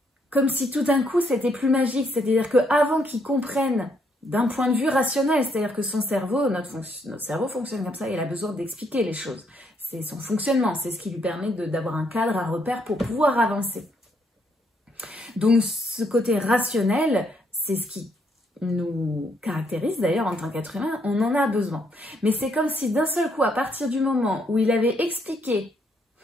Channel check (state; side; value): normal; both; correlation 0.73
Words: Comme si tout d'un coup c'était plus magique, c'est-à-dire qu'avant qu'il comprenne d'un point de vue rationnel, c'est-à-dire que son cerveau, notre cerveau fonctionne comme ça, il a besoin d'expliquer les choses. C'est son fonctionnement, c'est ce qui lui permet d'avoir un cadre, un repère pour pouvoir avancer. Donc ce côté rationnel, c'est ce qui nous caractérise d'ailleurs en tant qu'être humain, on en a besoin. Mais c'est comme si d'un seul coup, à partir du moment où il avait expliqué